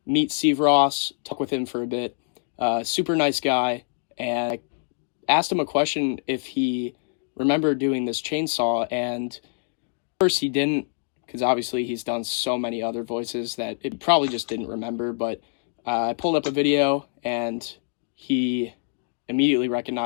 meet Steve Ross, talk with him for a bit. Super nice guy. And I asked him a question if he remembered doing this chainsaw, and first he didn't, because obviously he's done so many other voices that it probably just didn't remember. But I pulled up a video, and he immediately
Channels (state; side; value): silent; right; 61 dB below the other